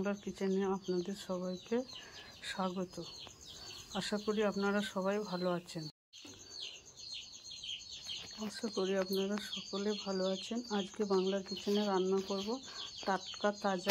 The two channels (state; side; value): identical; both; correlation 1.00